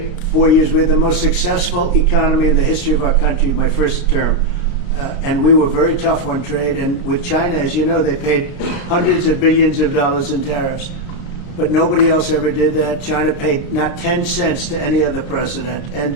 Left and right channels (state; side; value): late; right; 33 ms